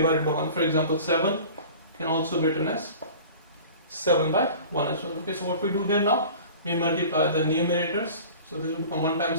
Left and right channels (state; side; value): inverted; both; correlation -0.41